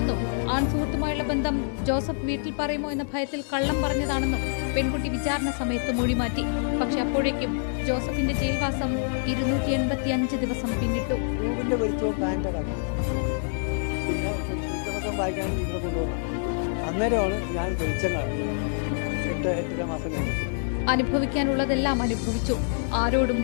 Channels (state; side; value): silent; right; digital silence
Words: ആൺ സുഹൃത്തുമായുള്ള ബന്ധം ജോസഫ് വീട്ടിൽ പറയുമോ എന്ന ഭയത്തിൽ കള്ളം പറഞ്ഞതാണെന്നും പെൺകുട്ടി വിചാരണ സമയത്ത് മൊഴിമാറ്റി. പക്ഷെ അപ്പോഴേക്കും ജോസഫിന്റെ ജയിൽവാസം 285 ദിവസം പിന്നിട്ടു. അനുഭവിക്കാനുള്ളതെല്ലാം അനുഭവിച്ചു. ആരോടും